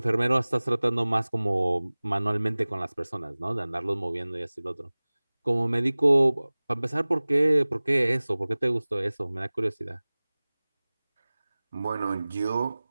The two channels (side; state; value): both; inverted; correlation -0.99